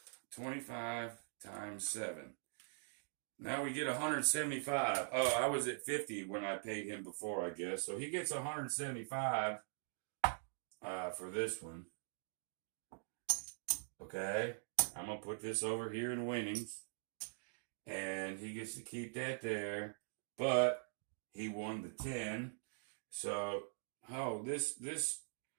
25 times 7. Now we get 175. Oh, I was at 50 when I paid him before, I guess. So he gets 175 for this one. Okay, I'm going to put this over here in winnings. And he gets to keep that there. But he won the 10. So, oh, this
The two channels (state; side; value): silent; left; digital silence